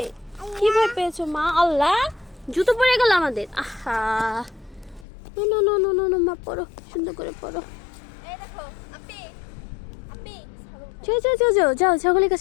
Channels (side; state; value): right; drops out; at 5.1 s